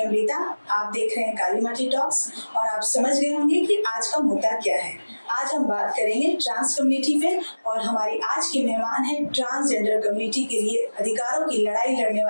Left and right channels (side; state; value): both; inverted; correlation -1.00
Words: आप देख रहे हैं काली माटी टॉक्स और आप समझ गए होंगे कि आज का मुद्दा क्या है। आज हम बात करेंगे ट्रांस कम्युनिटी पे और हमारी आज की मेहमान है ट्रांसजेंडर कम्युनिटी के लिए अधिकारों की लड़ाई लड़ने